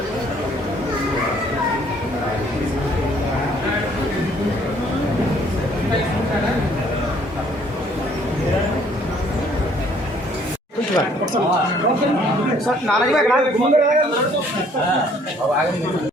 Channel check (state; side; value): normal; both; correlation 0.61